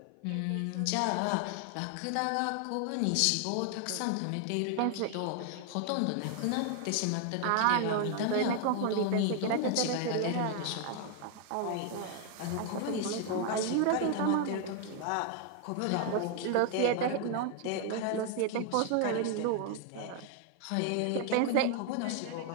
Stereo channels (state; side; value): different; both; correlation 0.00